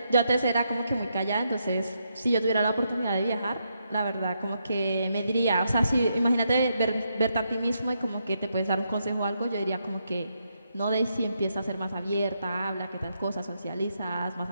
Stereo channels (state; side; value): inverted; both; correlation -0.80